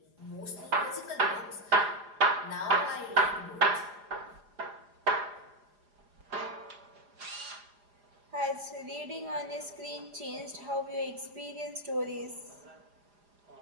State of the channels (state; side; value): late; left; 4.9 ms